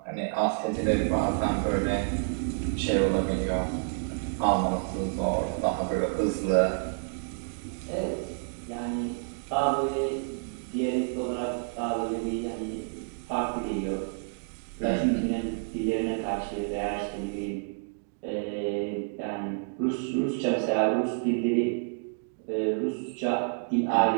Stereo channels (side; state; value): left; silent; 59 dB below the other